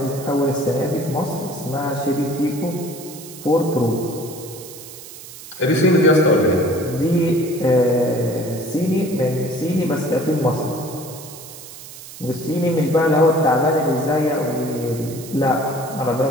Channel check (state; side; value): noise; right; hiss, 15 dB below the sound